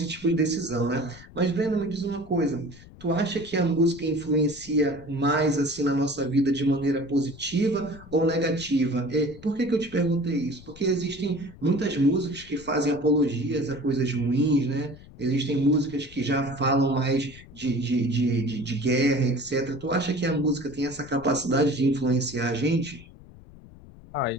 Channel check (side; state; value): left; noise; rumble, 20 dB below the sound